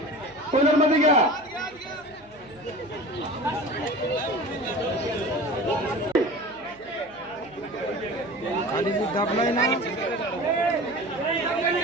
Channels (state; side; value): noise; right; hum, 28 dB below the sound